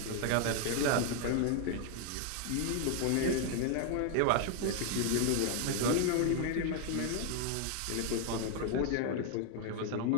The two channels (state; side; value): different; both; correlation 0.00